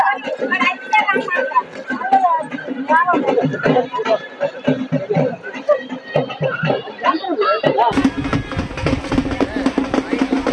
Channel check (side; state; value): both; identical; correlation 1.00